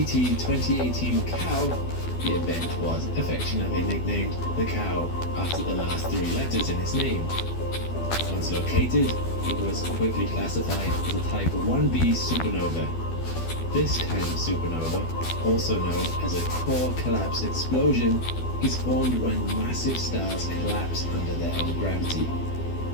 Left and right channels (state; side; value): late; right; 12 ms